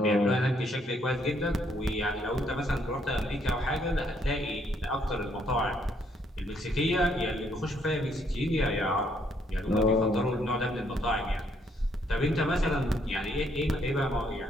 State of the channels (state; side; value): normal; both; correlation 0.70